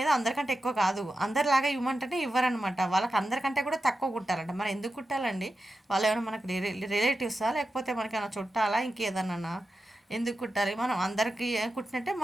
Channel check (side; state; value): both; normal; correlation 0.91